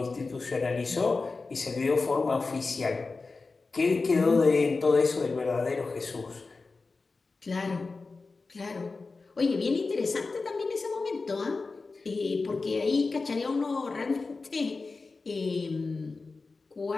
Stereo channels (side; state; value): right; quieter; 4.0 dB